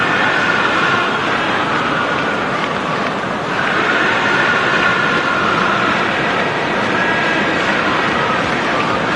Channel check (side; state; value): both; identical; correlation 1.00